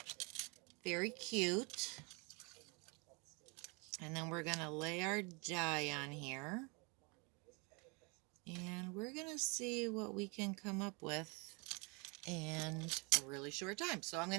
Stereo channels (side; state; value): left; quieter; 30.7 dB